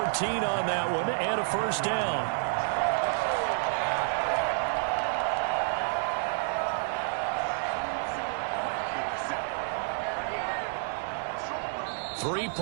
on that one and a first down. 3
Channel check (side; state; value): left; silent; 58 dB below the other